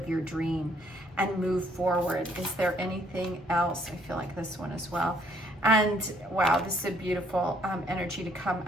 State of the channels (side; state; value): both; normal; correlation 0.66